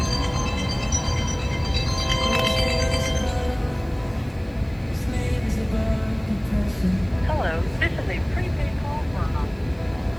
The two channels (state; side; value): noise; right; hiss, 30 dB below the sound